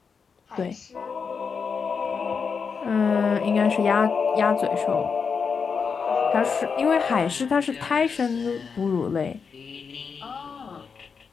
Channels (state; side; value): quieter; right; 5.7 dB